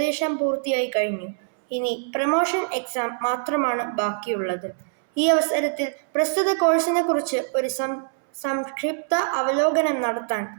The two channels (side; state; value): left; silent; 63 dB below the other